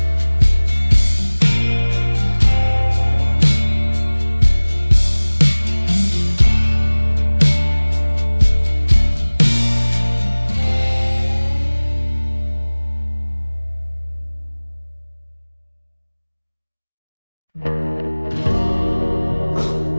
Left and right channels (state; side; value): inverted; both; correlation -1.00